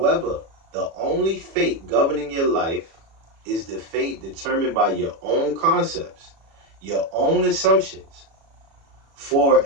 the only fate governing your life is the fate determined by your own concepts, your own assumptions. For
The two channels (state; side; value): late; left; 36 ms